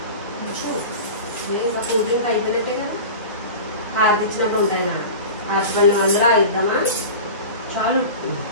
ఇంకా కూలింగ్ అయిపోయినట్టే కదా. హారతి ఇచ్చినట్టు ఉంటాయి నా హారతి అందరూ ఇద్దామా చాలు.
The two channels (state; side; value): inverted; both; correlation -0.33